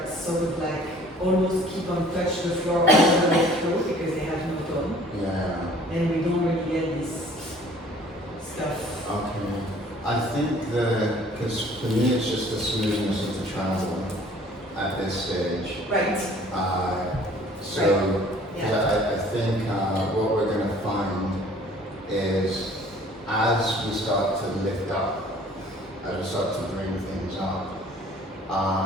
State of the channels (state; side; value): normal; both; correlation 0.52